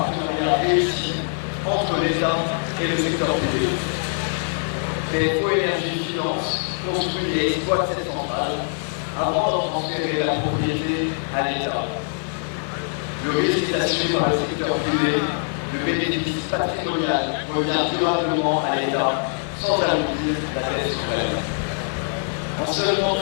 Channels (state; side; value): silent; right; 60 dB below the other